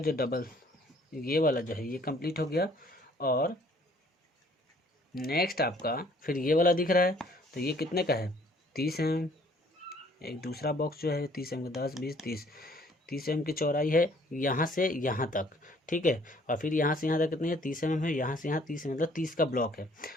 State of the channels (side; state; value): both; normal; correlation 0.59